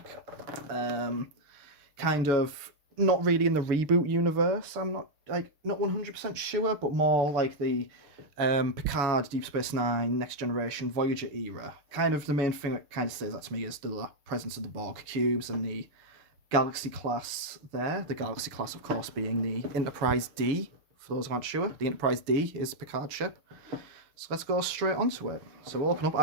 kind of not really in the reboot universe. I'm not 100% sure, but more like the Picard, Deep Space Nine, Next Generation, Voyager era. Kind of the main thing that kind of says that to me is the presence of the Borg cubes and the Galaxy class there. The Galaxy class, of course, being the Enterprise D. For those who aren't sure, the Enterprise D is Picard's ship. So let's go straight onto it. So we'll open up. I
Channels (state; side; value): late; left; 6.7 ms